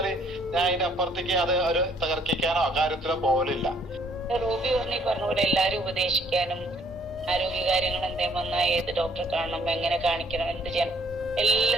ഞാൻ അതിന്റെ അപ്പുറത്തേക്ക് അത് ഒരു തകർക്കിക്കാനോ കാര്യത്തിലോ പോകലില്ല. റോബി പറഞ്ഞ പോലെ എല്ലാരും ഉപദേശിക്കാനും ആരോഗ്യ കാര്യങ്ങൾ എന്തേലും വന്നാൽ ഏത് ഡോക്ടറെ കാണണം, എങ്ങനെ കാണിക്കണം, എന്ത് ചെയ്യണം,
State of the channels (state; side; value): normal; both; correlation 0.63